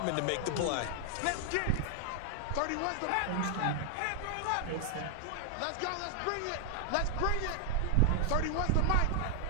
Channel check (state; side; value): different; both; correlation 0.00